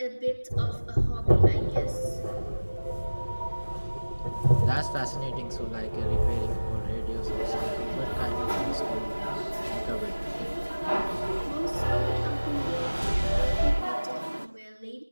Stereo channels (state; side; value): inverted; both; correlation -1.00